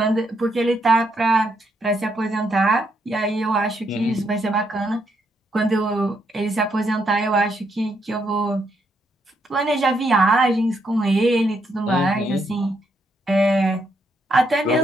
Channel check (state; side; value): normal; both; correlation 0.77